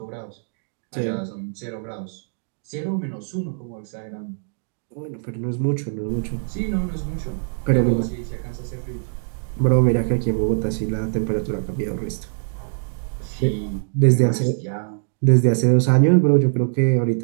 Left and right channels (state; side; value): silent; left; digital silence